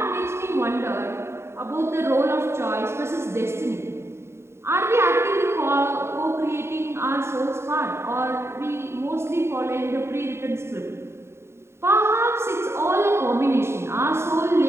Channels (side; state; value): left; late; 0.13 ms